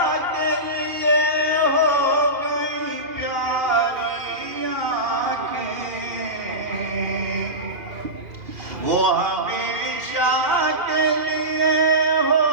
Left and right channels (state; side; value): late; left; 2.5 ms